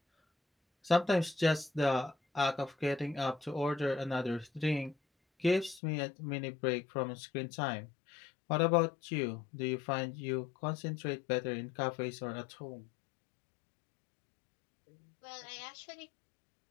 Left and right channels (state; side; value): drops out; right; at 5.8 s